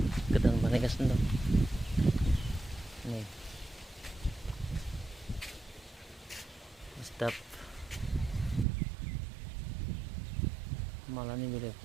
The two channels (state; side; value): drops out; left; at 8.7 s